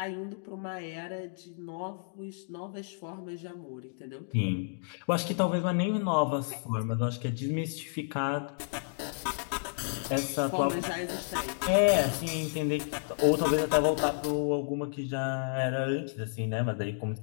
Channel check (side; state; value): right; silent; digital silence